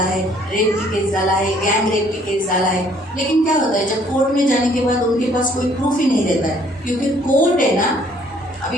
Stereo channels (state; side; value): normal; both; correlation 0.61